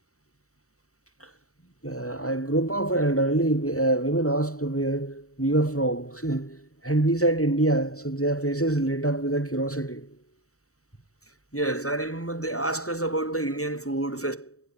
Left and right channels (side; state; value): right; late; 0.65 ms